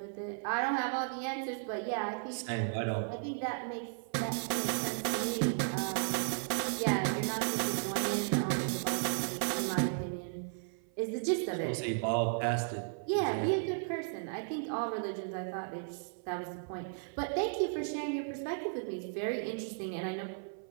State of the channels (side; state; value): left; silent; 54 dB below the other